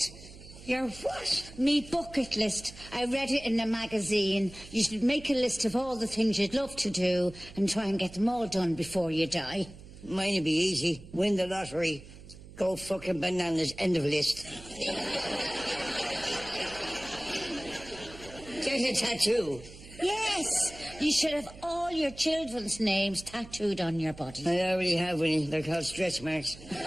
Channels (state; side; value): noise; right; hum, 17 dB below the sound